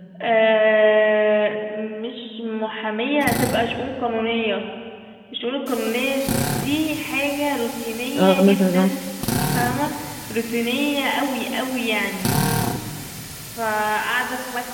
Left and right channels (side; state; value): both; identical; correlation 1.00